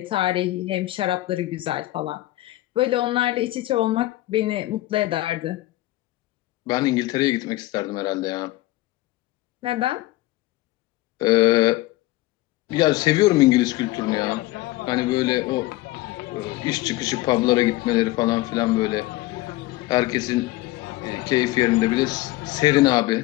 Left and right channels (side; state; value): right; quieter; 18.0 dB